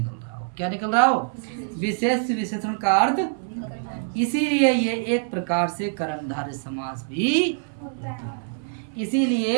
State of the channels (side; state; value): left; silent; 62 dB below the other